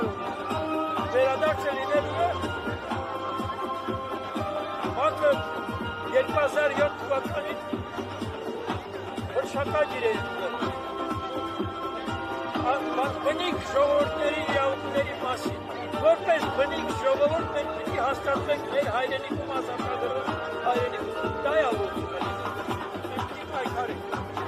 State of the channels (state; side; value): identical; both; correlation 1.00